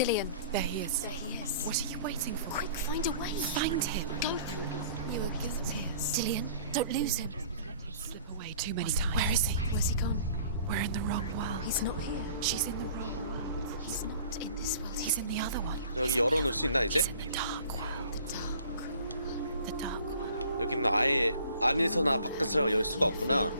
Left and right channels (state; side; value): inverted; both; correlation -0.50